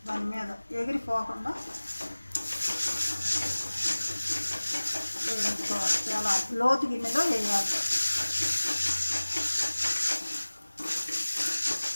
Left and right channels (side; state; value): both; inverted; correlation -1.00